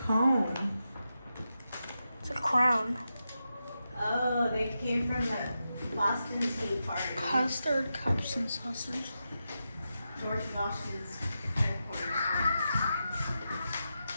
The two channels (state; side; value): inverted; both; correlation -0.89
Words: cone. It's a crown. Oh, they came from the Boston Tea Party. Custard cups and sausage. George Washington's headquarters.